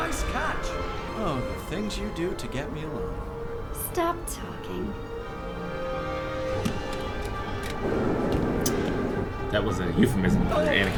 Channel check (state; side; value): identical; both; correlation 1.00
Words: catch. Oh, the things you do to get me alone. Stop talking. That was a euphemism for